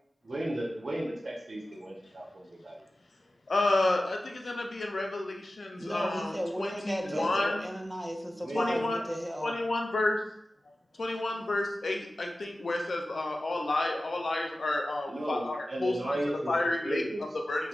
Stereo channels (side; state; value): both; normal; correlation 0.95